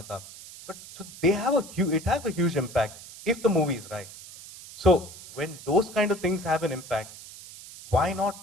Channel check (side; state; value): right; noise; hiss, 16 dB below the sound